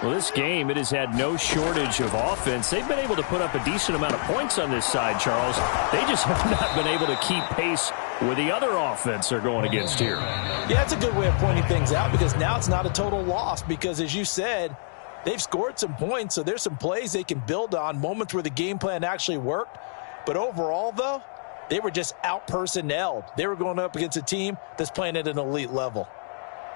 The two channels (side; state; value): right; silent; digital silence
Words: Well, this game, it has had no shortage of offense. They've been able to put up a decent amount of points on this side, Charles. They just have not been able to keep pace with the other offense they're going against here. Yeah, that's a good way of pointing things out because now it's not a total loss because, as you said, they've scored some points, so there's some plays they can build on, moments where the game plan actually worked. But overall, though, they were just out-personnelled. They were going up against a team that's playing at an elite level.